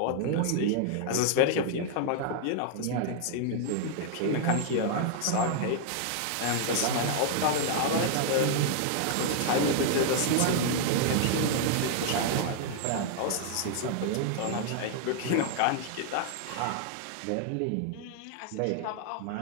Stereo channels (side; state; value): both; different; correlation -0.01